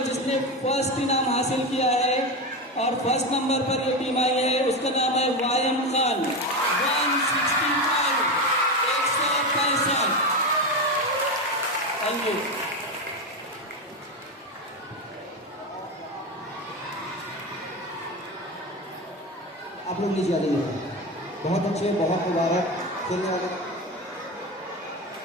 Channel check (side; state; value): both; normal; correlation 0.17